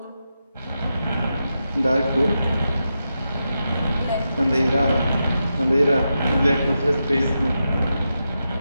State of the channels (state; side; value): inverted; both; correlation -0.88